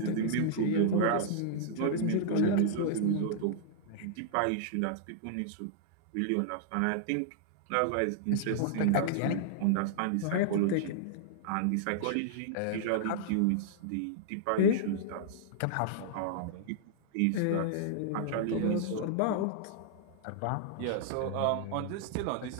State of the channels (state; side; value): different; both; correlation -0.01